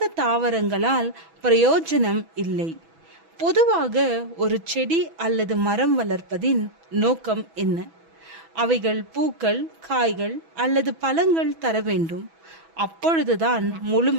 தாவரங்களால் பிரயோஜனம் இல்லை. பொதுவாக ஒரு செடி அல்லது மரம் வளர்ப்பதின் நோக்கம் என்ன? அவைகள் பூக்கள், காய்கள் அல்லது பழங்கள் தர வேண்டும். அப்பொழுதுதான்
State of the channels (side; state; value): left; late; 6.1 ms